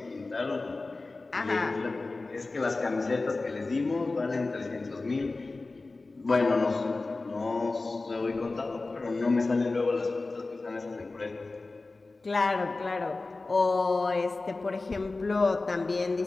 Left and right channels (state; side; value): quieter; right; 3.4 dB